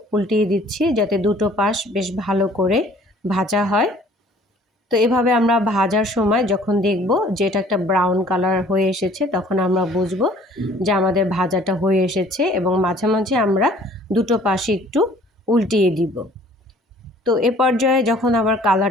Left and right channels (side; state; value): both; normal; correlation 0.54